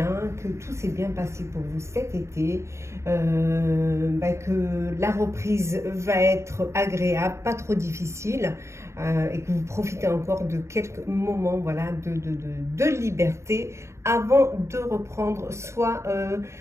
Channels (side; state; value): left; late; 0.14 ms